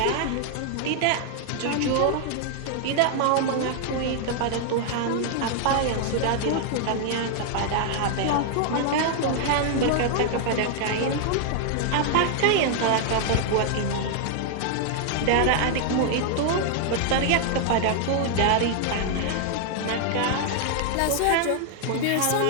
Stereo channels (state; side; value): different; both; correlation 0.00